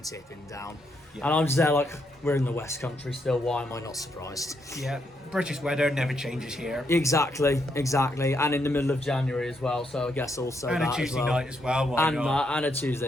tipping down. Yeah. And I'm just there like, we're in the West Country still, why am I not surprised? Yeah, British weather never changes here. Exactly. And in the middle of January as well, so I guess also and that a Tuesday as well. night as well, why not? And a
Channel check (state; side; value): normal; both; correlation 0.78